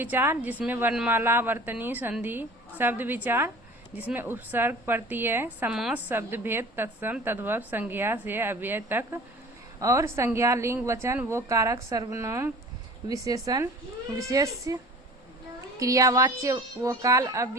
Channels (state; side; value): normal; both; correlation 0.43